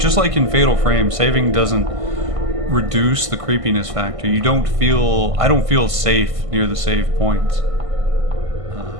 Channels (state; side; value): late; left; 1.5 ms